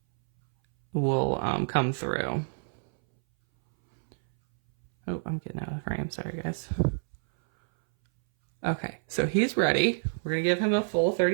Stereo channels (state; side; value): silent; left; 60 dB below the other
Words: will come through. Oh, I'm getting out of frame. Sorry, guys. Okay, so he's ready. We're going to give him a full